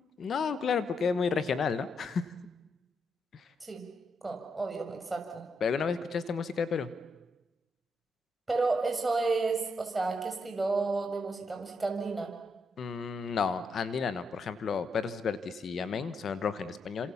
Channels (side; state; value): both; normal; correlation 0.80